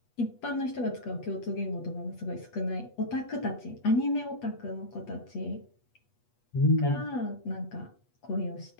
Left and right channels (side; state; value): right; late; 8.3 ms